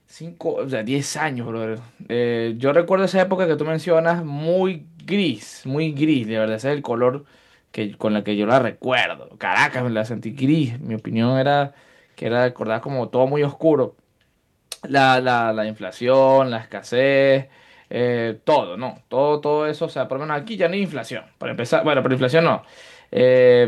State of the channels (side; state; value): both; identical; correlation 1.00